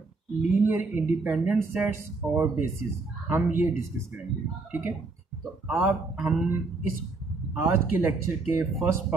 लीनियर इंडिपेंडेंट सेट्स और बेसिस हम ये डिस्कस करेंगे। ठीक है, तो हम इस आज के लेक्चर के फर्स्ट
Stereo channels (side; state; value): left; quieter; 3.7 dB